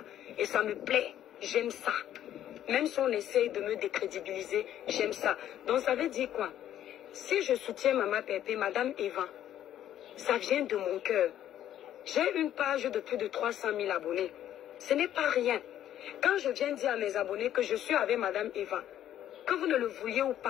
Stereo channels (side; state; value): right; quieter; 11.4 dB